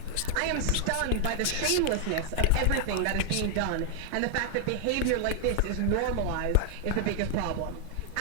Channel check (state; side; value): different; both; correlation 0.00